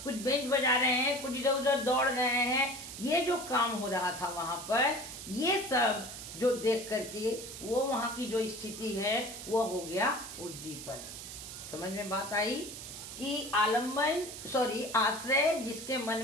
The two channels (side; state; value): right; noise; hiss, 10 dB below the sound